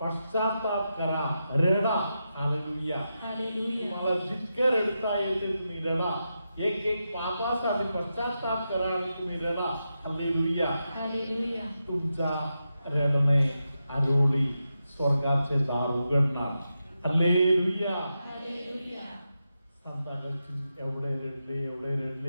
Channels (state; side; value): inverted; both; correlation -0.88